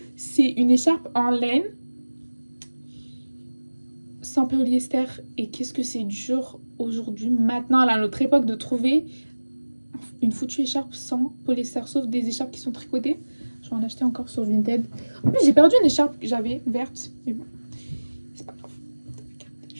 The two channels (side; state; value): both; inverted; correlation -1.00